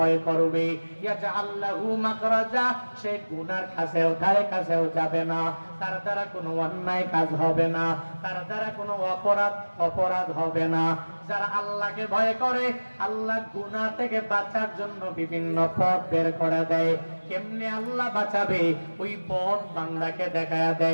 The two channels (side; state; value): both; inverted; correlation -1.00